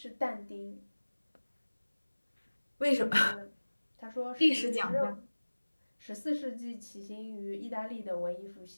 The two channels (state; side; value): inverted; both; correlation -1.00